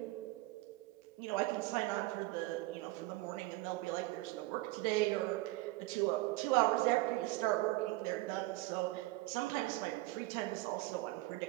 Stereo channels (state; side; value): quieter; left; 19.5 dB